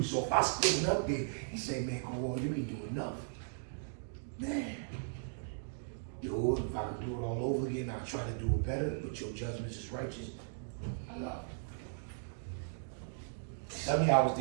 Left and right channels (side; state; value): left; silent; digital silence